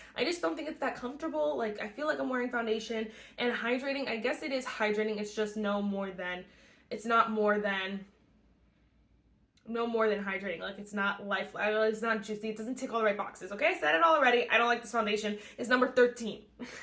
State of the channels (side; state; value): both; identical; correlation 1.00